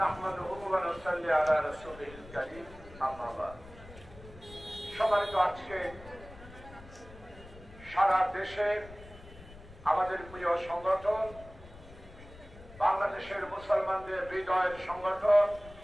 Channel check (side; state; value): left; noise; rumble, 18 dB below the sound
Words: ونصلي على رسوله الكريم أما بعد সম্মানিত আজকে সারা দেশে আমাদের প্রিয় সংগঠন বাংলাদেশের মুসলমানদের হৃদয়ের সংগঠন